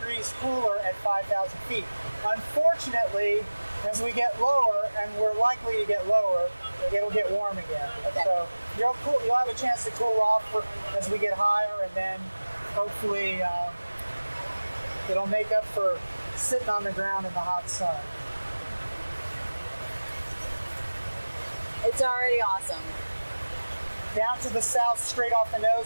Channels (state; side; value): inverted; both; correlation -1.00